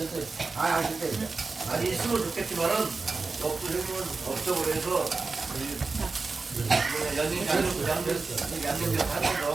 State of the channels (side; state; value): left; quieter; 4.1 dB